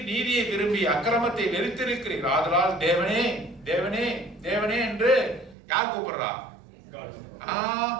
நீதியை விரும்பி அக்கிரமத்தை வெறுத்திருக்கிறீர். ஆதலால் தேவனே தேவனே தேவனே என்று யார் கூப்பிடுறா?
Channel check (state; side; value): drops out; left; at 5.6 s